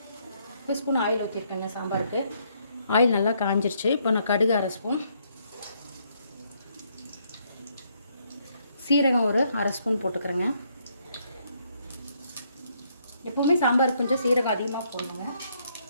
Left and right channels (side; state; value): both; inverted; correlation -0.71